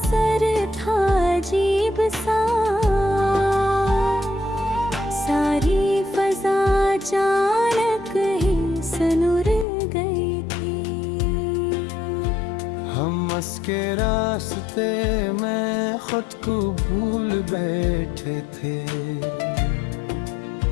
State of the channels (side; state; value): right; drops out; at 9.7 s